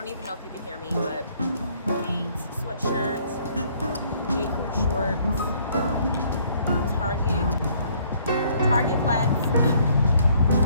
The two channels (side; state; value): both; inverted; correlation -0.63